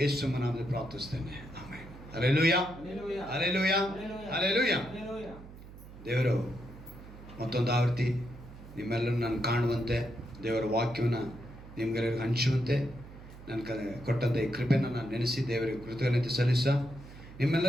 ಯೇಸು ನಾಮದಲ್ಲಿ ಪ್ರಾರ್ಥಿಸ್ತೇನೆ. ಆಮೆನ್. Hallelujah, hallelujah, hallelujah. ದೇವರು ಮತ್ತೊಂದು ಆವೃತ್ತಿ ನಿಮ್ಮೆಲ್ಲರೂ ನಾನು ಕಾಣುವಂತೆ, ದೇವರ ವಾಕ್ಯವನ್ನು ನಿಮ್ಗೆಲ್ಲರಿಗೂ ಹಂಚುವಂತೆ ನನ್ನ ಕೊಟ್ಟಂಥ ಈ ಕೃಪೆಯನ್ನು ನಾನು ನೆನೆಸಿ ದೇವರಿಗೆ ಕೃತಜ್ಞತೆ ಸಲ್ಲಿಸ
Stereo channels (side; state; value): right; noise; hum, 16 dB below the sound